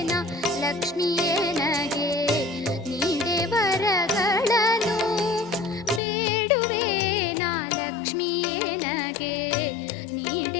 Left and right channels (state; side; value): drops out; right; at 6.0 s